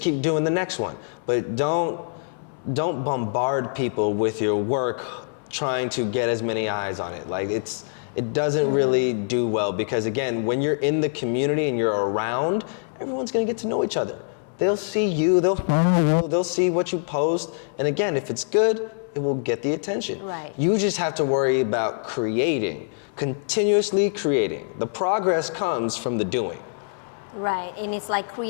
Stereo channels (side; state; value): right; silent; 62 dB below the other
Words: keep doing the next one. But don't bombard people with your work trying to get as many eyes on it. It doesn't really do well, because again, when you're in the community and you're around, everyone's gonna get to know each other. They'll see you, they'll follow you, they'll see what you post, and again, if it's good, it will get the attention. Right. You just have to worry about creating, continuously creating. The progress comes from the doing. Right, and it's